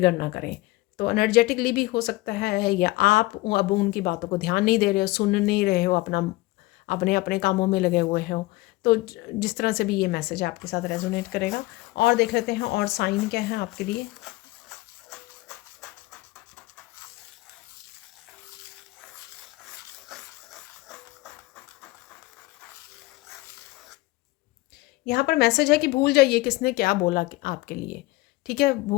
ना करें। तो एनर्जेटिकली भी हो सकता है, या आप अब उनकी बातों को ध्यान नहीं दे रहे हो, सुन नहीं रहे हो, अपना अपने अपने कामों में लगे हुए हो। तो जिस तरह से भी ये मैसेज आपके साथ रेजोनेट करेगा। और देख लेते हैं और साइन क्या है आपके लिए। यहाँ पर मैसेज है कि भूल जाइए किसने क्या बोला आपके लिए, ठीक है,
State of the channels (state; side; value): quieter; right; 20.5 dB